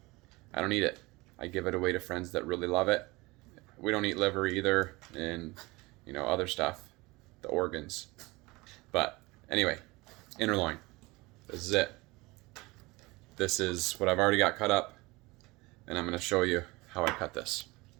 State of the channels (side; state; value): left; quieter; 22.8 dB